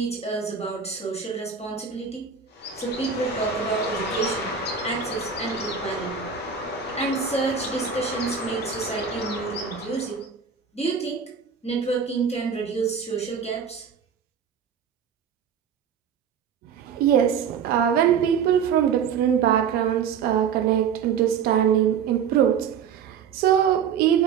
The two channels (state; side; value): quieter; left; 6.8 dB